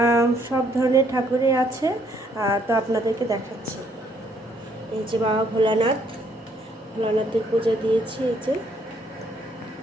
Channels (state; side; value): normal; both; correlation 0.67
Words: সব ধরনের ঠাকুরই আছে। তো আপনাদেরকে দেখাচ্ছি। এই যে বাবা ভোলানাথের পূজা দিয়েছি। এই যে